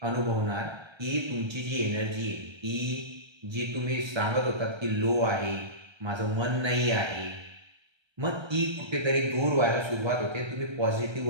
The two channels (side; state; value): left; late; 1.3 ms